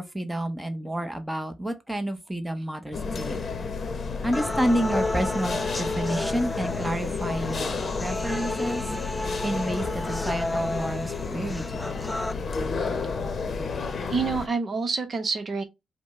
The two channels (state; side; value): normal; both; correlation 0.87